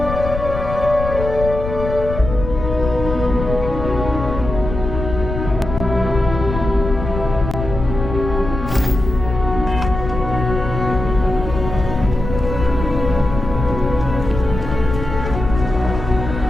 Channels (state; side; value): noise; left; rumble, 6 dB below the sound